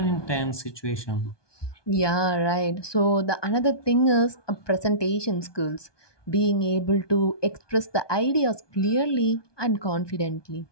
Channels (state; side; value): late; right; 1.2 ms